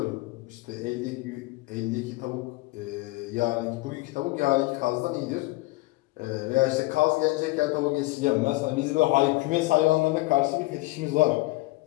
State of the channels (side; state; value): right; quieter; 21.1 dB